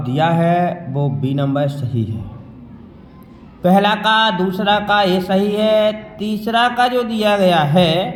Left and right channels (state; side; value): identical; both; correlation 1.00